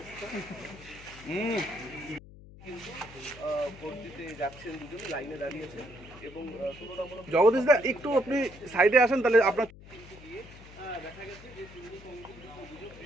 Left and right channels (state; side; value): noise; left; hum, 18 dB below the sound